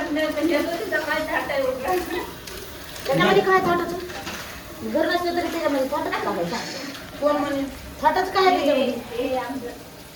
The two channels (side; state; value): both; identical; correlation 1.00